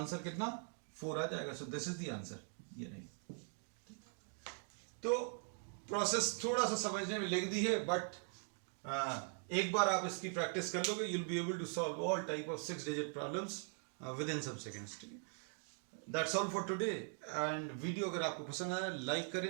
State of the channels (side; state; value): left; silent; 50 dB below the other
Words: कितना, 4 आ जाएगा। So this is the answer, ये नहीं। तो प्रोसेस थोड़ा सा समझने में लेंदी है, बट एक बार आप इसकी प्रैक्टिस कर लोगे, you'll be able to solve all type of 6 digit problems within some seconds। ठीक है, that's all for today। and video अगर आपको पसंद आया, लाइक